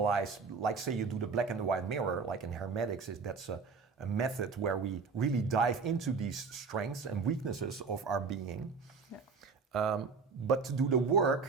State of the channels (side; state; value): left; quieter; 5.0 dB